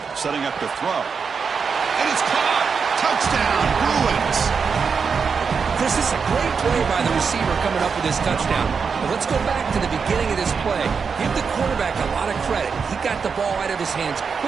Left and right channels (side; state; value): left; quieter; 5.7 dB